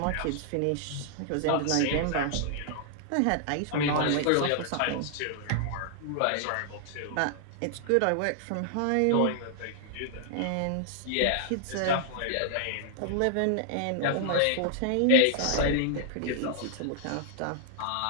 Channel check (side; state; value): both; different; correlation -0.01